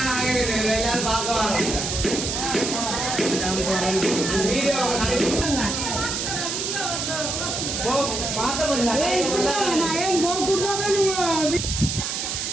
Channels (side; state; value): right; noise; hiss, 2 dB below the sound